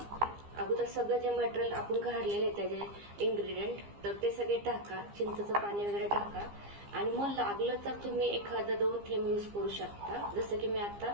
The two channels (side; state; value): left; late; 15 ms